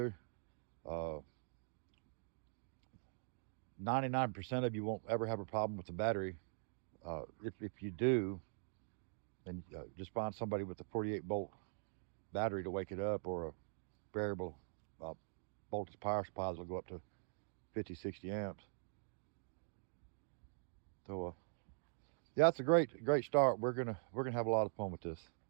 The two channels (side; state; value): left; silent; digital silence